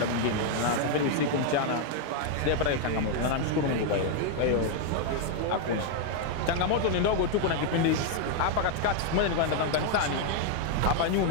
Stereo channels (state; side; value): different; both; correlation 0.00